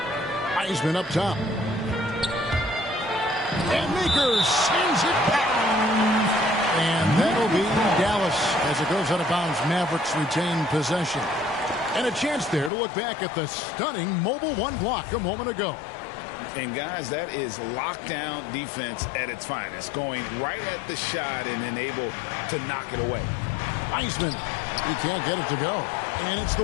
Wiseman up top. And Makers sends it back. And that'll be Dallas as it goes out of bounds. Mavericks retain possession. And a chance there to look back at the stunning mobile one block a moment ago. And guys, that is lockdown defense at its finest. Going right at the shot and then able to knock it away. Wiseman, he can't get it to go. And it's the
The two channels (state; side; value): drops out; right; at 12.7 s